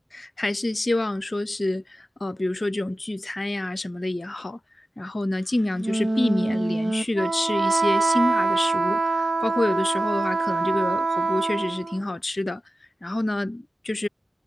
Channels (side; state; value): both; normal; correlation 0.94